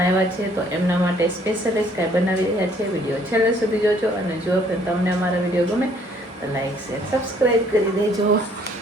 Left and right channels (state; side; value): normal; both; correlation 0.62